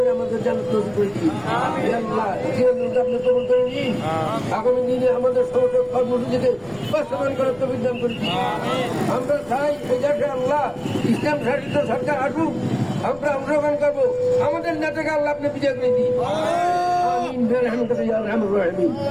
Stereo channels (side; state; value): left; noise; rumble, 24 dB below the sound